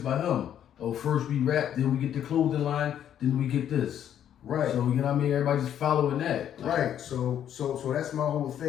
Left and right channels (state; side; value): quieter; right; 10.1 dB